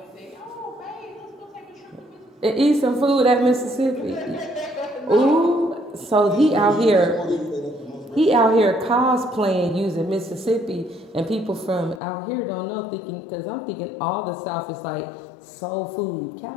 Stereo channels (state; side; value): drops out; right; at 12.0 s